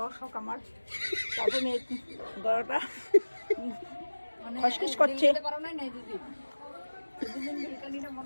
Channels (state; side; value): inverted; both; correlation -1.00